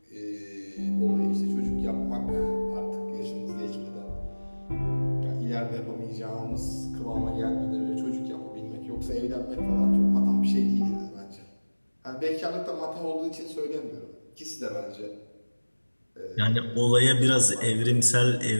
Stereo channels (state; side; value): inverted; both; correlation -1.00